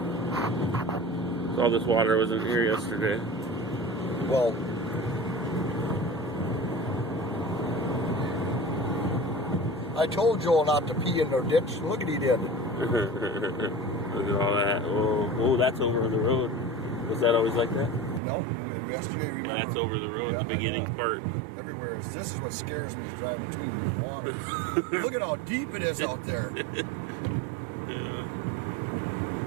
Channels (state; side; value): drops out; left; at 18.2 s